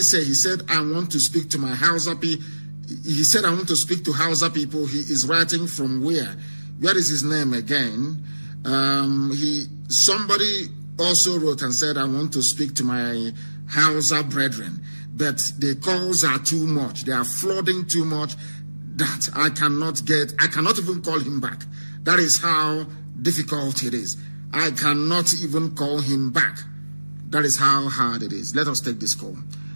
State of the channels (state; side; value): inverted; both; correlation -1.00